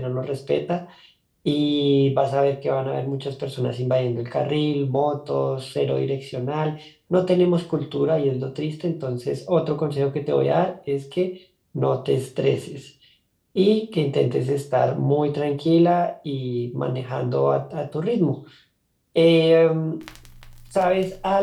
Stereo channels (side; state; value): both; identical; correlation 1.00